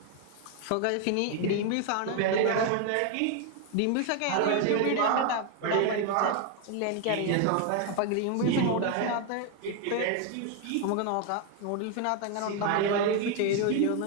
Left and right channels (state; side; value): different; both; correlation 0.01